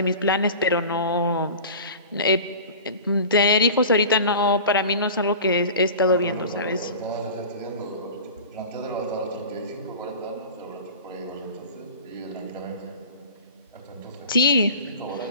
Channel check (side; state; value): both; inverted; correlation -0.37